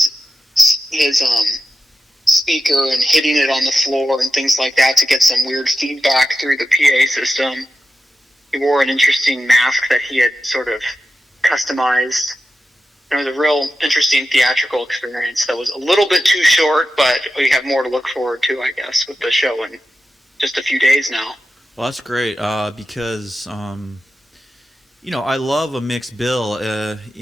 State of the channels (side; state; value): both; normal; correlation 0.91